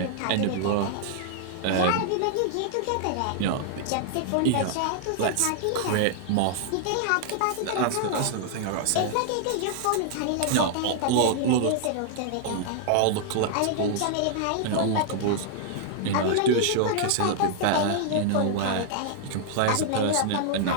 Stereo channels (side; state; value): both; different; correlation -0.01